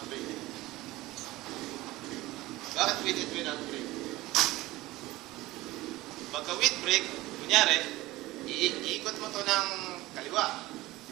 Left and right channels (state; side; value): quieter; left; 18.6 dB